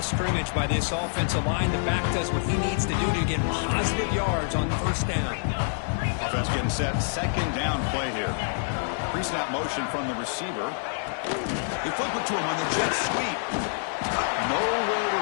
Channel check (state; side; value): silent; right; 60 dB below the other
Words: scrimmage by this offensive line. The back does what he needs to do to get positive yards on first down. Offense getting set. 2nd down play here. Pre-snap motion from the receiver. They flip it to him on the jet sweep. Nowhere to